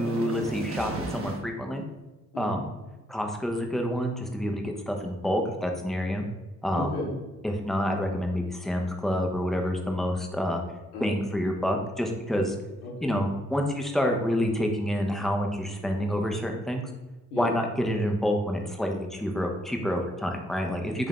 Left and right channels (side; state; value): both; normal; correlation 0.75